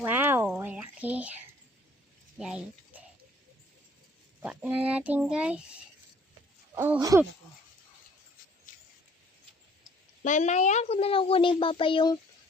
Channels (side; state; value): both; normal; correlation 0.57